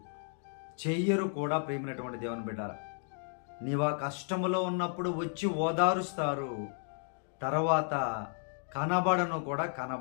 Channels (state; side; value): silent; right; 56 dB below the other